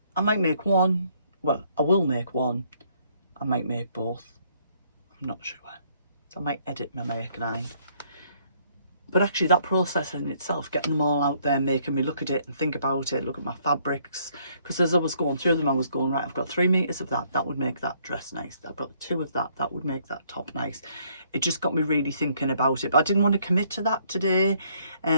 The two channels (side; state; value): both; inverted; correlation -0.67